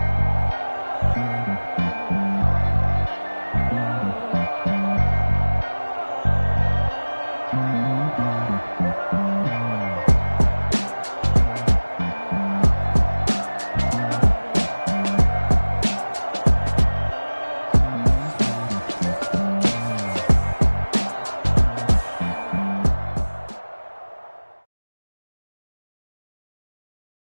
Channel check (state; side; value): inverted; both; correlation -1.00